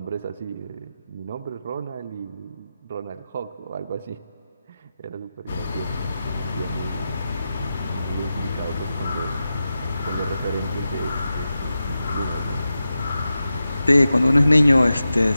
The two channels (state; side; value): inverted; both; correlation -0.92